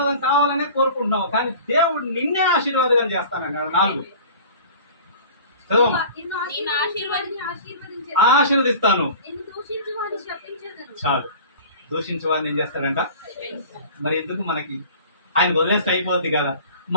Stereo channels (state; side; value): inverted; both; correlation -0.42